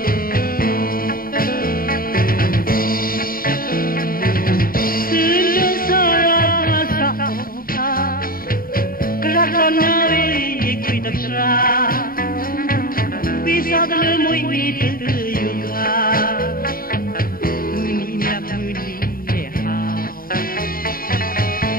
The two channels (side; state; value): right; late; 0.42 ms